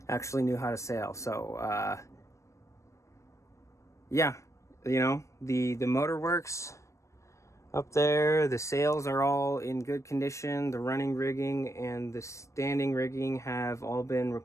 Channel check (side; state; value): right; late; 0.15 ms